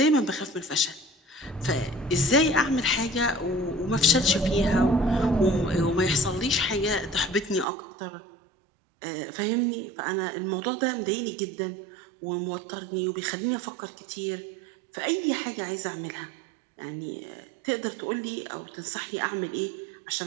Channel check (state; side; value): drops out; left; at 7.7 s